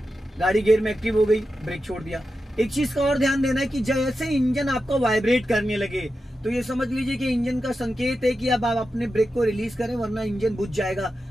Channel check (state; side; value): normal; both; correlation 0.90